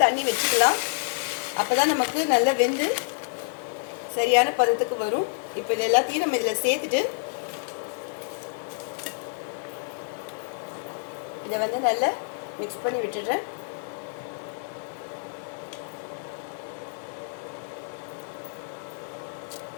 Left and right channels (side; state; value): right; silent; digital silence